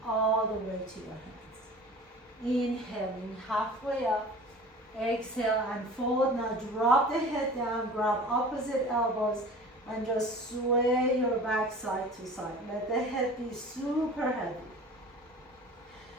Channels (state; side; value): normal; both; correlation 0.41